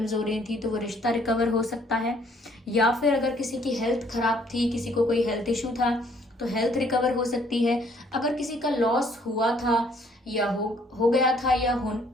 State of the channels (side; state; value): both; normal; correlation 0.63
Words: हो रही थी, तो वो रिश्ता रिकवर हो सकता है। या फिर अगर किसी की हेल्थ खराब थी, किसी को कोई हेल्थ इशू था, तो हेल्थ रिकवर हो सकती है। अगर किसी का लॉस हुआ था या हो गया था या